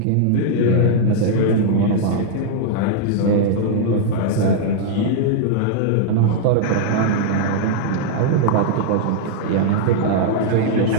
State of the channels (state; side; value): different; both; correlation -0.01